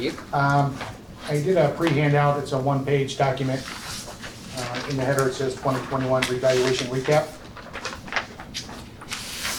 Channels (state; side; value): identical; both; correlation 1.00